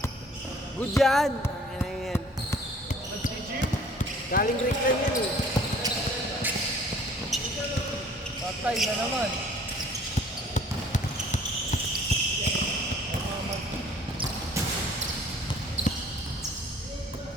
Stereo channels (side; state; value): both; normal; correlation 0.53